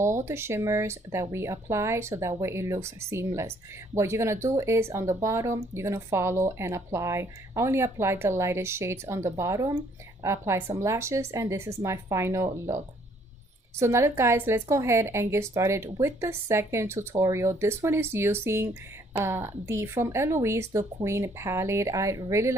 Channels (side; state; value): both; normal; correlation 0.64